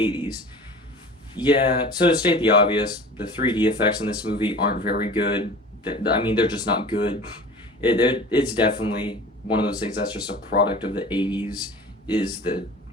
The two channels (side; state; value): both; normal; correlation 0.40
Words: Yeah, so to state the obvious, the 3D effects in this movie aren't very good. I mean, they're just not good. It's definitely one of those things that's just a product of the 80s, is the